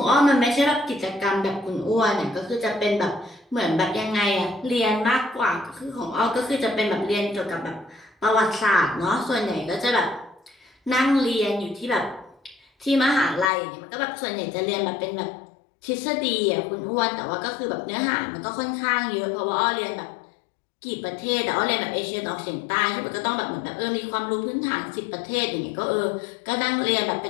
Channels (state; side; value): drops out; right; at 13.5 s